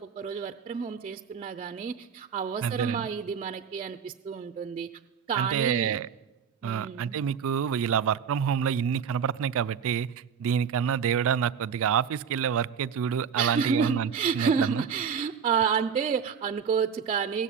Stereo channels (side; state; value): left; quieter; 7.0 dB